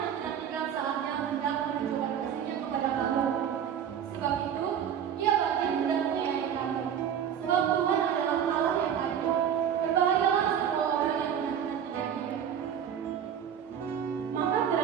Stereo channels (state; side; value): quieter; left; 8.8 dB